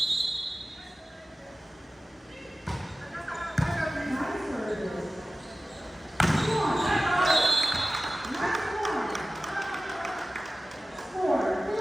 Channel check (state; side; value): normal; both; correlation 0.95